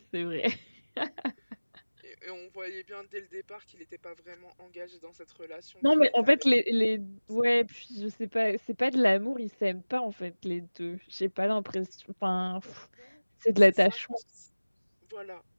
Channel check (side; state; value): both; inverted; correlation -1.00